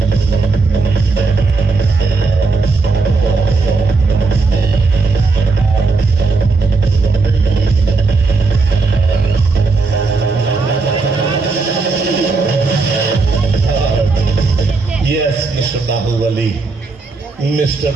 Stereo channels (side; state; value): left; quieter; 3.9 dB